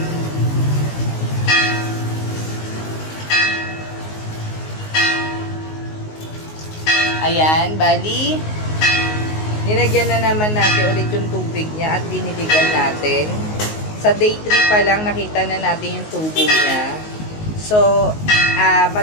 Ayan, bali, nilagyan na naman natin ulit yung tubig niya at diniligan natin. Sa day 3 pa lang, nakita na natin yung tubo niya. So,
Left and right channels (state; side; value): late; right; 19 ms